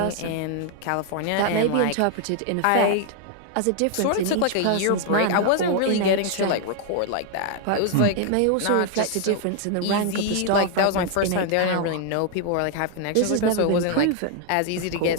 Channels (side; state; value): both; different; correlation 0.00